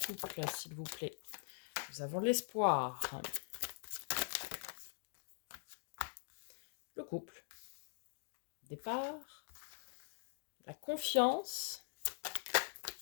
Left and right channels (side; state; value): right; silent; digital silence